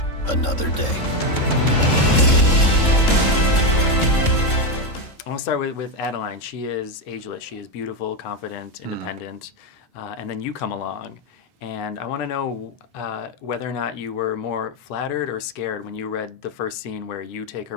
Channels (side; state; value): right; late; 3.7 ms